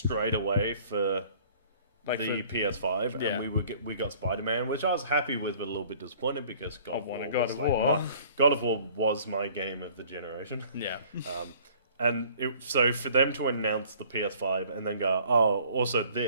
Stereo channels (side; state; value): both; inverted; correlation -0.54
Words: away for the PS5, yeah. and we got Spider-Man, which I was happy with, but a little bit disappointed because God of War was my game of the generation. Yeah. So for them to announce the PS5 and then go, oh, also